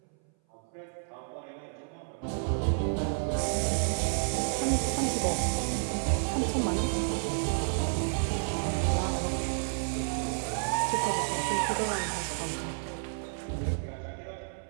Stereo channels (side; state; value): left; silent; 57 dB below the other